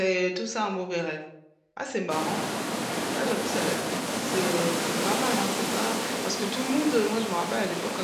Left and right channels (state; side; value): identical; both; correlation 1.00